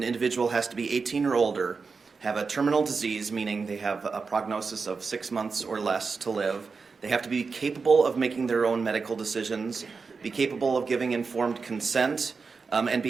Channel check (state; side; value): quieter; left; 4.8 dB